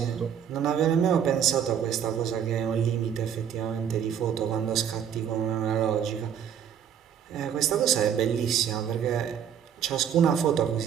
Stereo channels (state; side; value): quieter; left; 8.6 dB